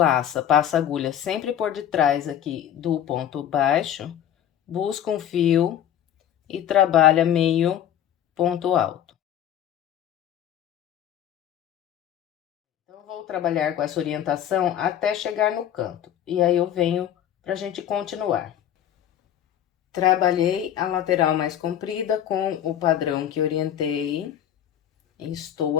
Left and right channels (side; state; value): right; quieter; 10.4 dB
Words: passa a agulha sempre por detrás aqui do ponto baixo, busca um fio e trabalha meio ponto alto. Então, vou trabalhar com essa orientação até chegar no canto, e aí eu venho pra gente continuar. Trabalhei a lateral mais comprida com o padrão que orientei. Estou